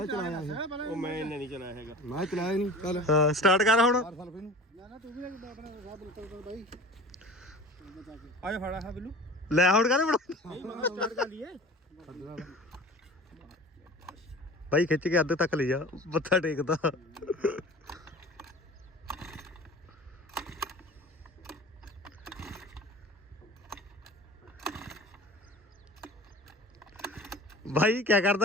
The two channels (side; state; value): both; normal; correlation 0.39